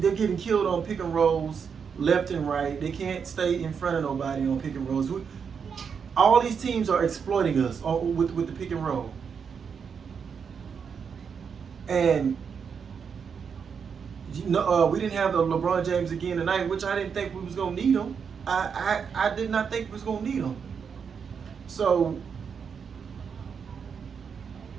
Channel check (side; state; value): left; quieter; 6.5 dB